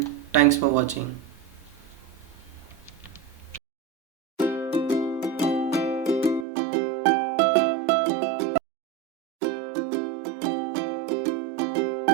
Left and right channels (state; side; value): drops out; left; at 6.5 s